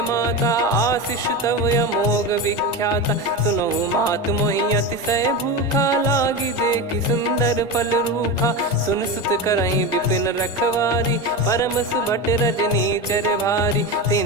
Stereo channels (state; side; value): normal; both; correlation 0.20